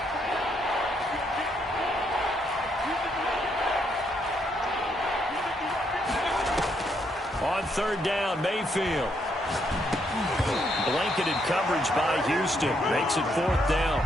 third down, Mayfield. Blanketed coverage by Houston. Makes it fourth down.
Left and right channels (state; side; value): normal; both; correlation 0.75